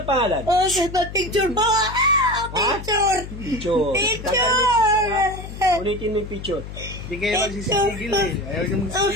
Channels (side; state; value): left; noise; hum, 11 dB below the sound